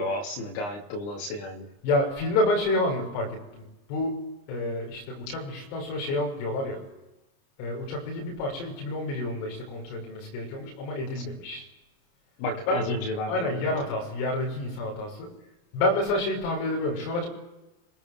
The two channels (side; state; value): right; late; 29 ms